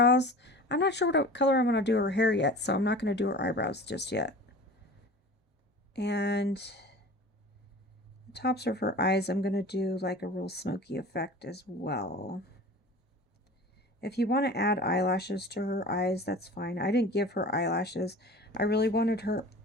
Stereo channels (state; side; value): normal; both; correlation 0.39